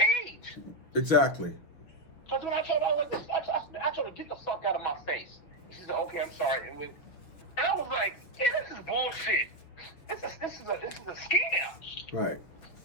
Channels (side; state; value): right; late; 6.1 ms